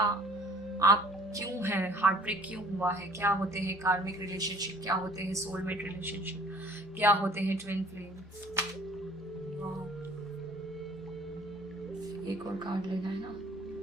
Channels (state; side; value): normal; both; correlation 0.53